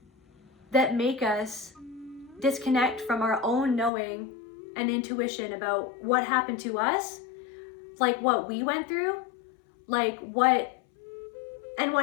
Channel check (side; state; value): right; drops out; at 3.9 s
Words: that make us disconnect from our own knowing and intuition about what happened to us, like what we went through, like what